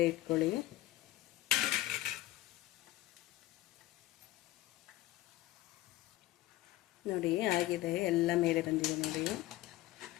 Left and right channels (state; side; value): quieter; right; 16.0 dB